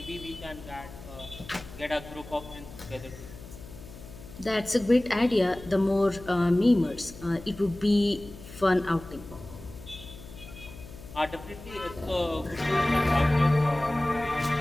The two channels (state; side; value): noise; left; hum, 16 dB below the sound